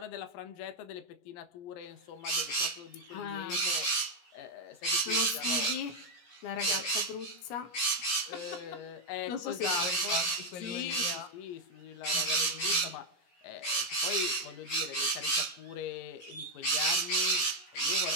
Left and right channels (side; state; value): right; late; 17 ms